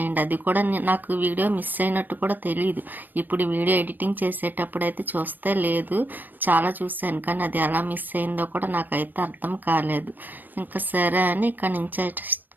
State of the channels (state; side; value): late; left; 0.090 ms